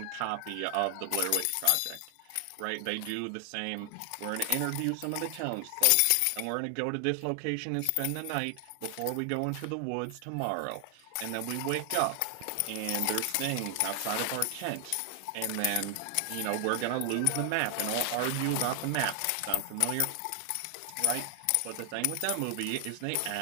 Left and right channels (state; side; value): different; both; correlation 0.00